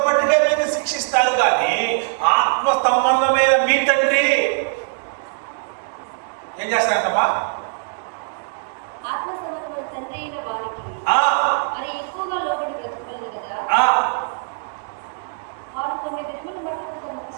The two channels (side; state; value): left; silent; digital silence